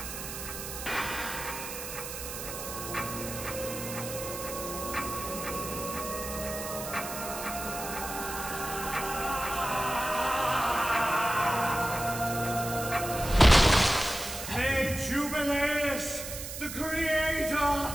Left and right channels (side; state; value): right; noise; hiss, 8 dB below the sound